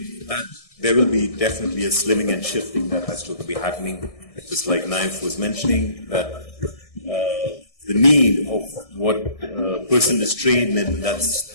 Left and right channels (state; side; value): late; right; 1.6 ms